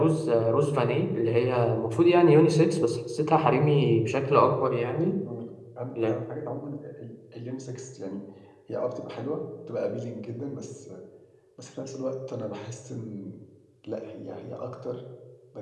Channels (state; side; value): identical; both; correlation 1.00